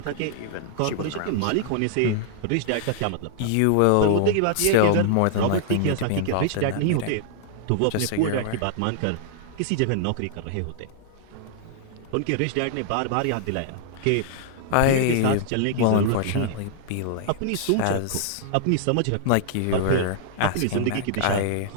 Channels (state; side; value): different; both; correlation -0.01